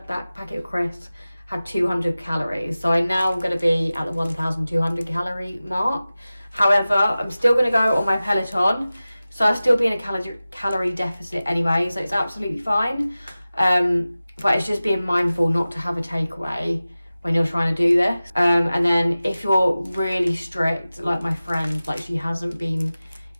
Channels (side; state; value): both; inverted; correlation -0.96